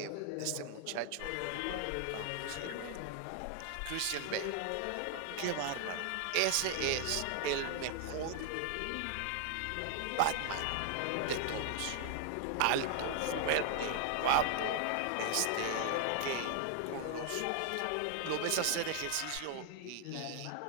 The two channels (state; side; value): different; both; correlation 0.00